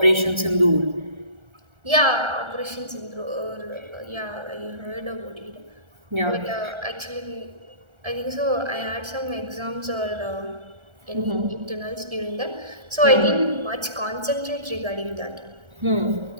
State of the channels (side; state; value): left; late; 1.3 ms